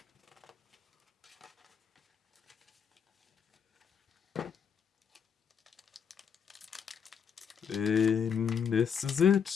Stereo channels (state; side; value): quieter; right; 7.3 dB